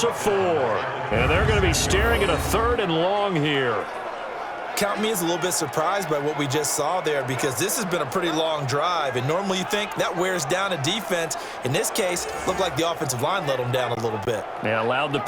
of 4, and they're going to be staring at a 3rd and long here. Count me as a little bit surprised by what we just saw there, because this has been a pretty long drive, and normally you think that wears down a defense. In this case, looked like the offensive line let them down a little bit. They allowed the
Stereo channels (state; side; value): identical; both; correlation 1.00